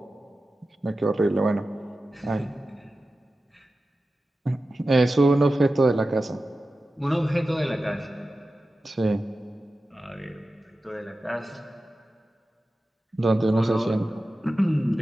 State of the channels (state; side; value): normal; both; correlation 0.94